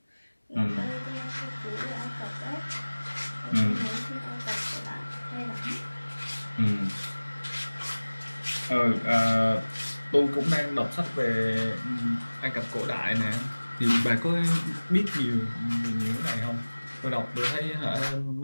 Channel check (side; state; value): both; inverted; correlation -1.00